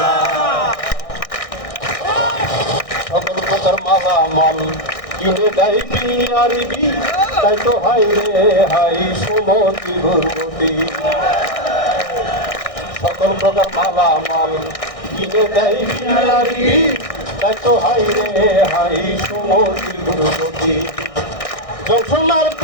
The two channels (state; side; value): late; right; 1.6 ms